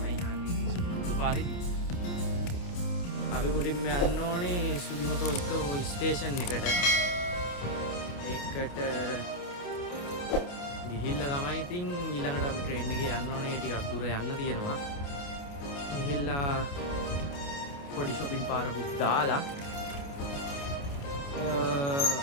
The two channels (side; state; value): right; late; 28 ms